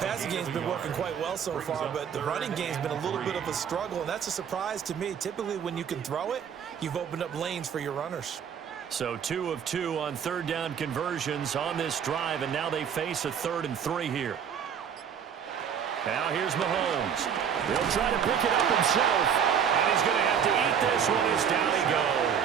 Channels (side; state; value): left; quieter; 7.9 dB